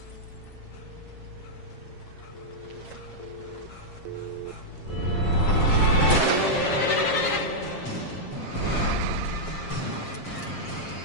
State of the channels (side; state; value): right; late; 7.5 ms